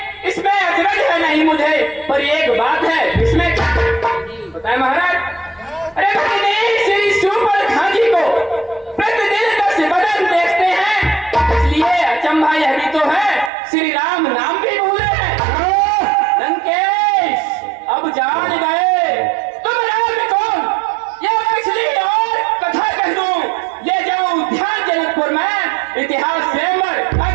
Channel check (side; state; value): left; drops out; at 13.5 s